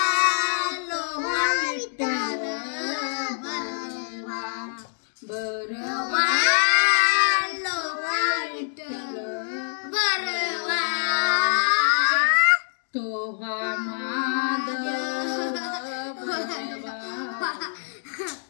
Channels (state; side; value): silent; right; digital silence